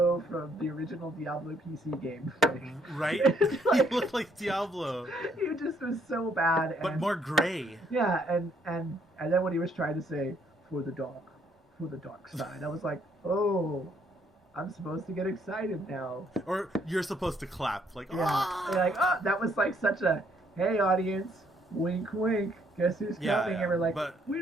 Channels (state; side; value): normal; both; correlation 0.68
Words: from the original Diablo PC game. Like, right? Like, he looked like Diablo. He just was so bad. But more gray. Yeah, and then when he was trying to say, for the dark side, I was like, oh, I'm supposed to get excited now. Or you're supposed to clap, like, Yeah. ah! Like, oh, that was like such a, hey, audience, wink, wink. Guess who's coming? And we're like, but we